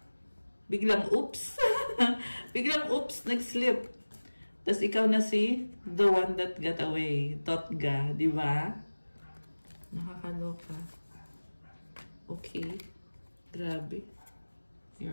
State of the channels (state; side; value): inverted; both; correlation -1.00